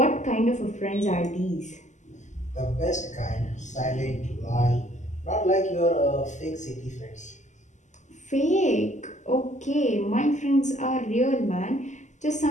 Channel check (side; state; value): right; late; 0.34 ms